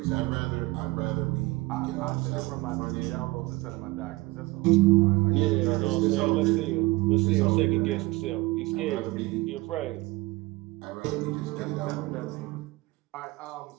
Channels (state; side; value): quieter; left; 21.1 dB